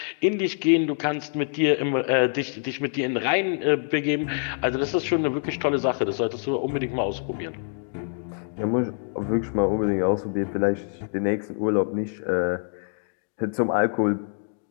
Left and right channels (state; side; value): silent; right; digital silence